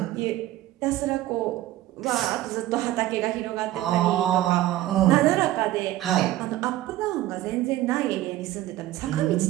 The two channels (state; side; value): quieter; left; 15.0 dB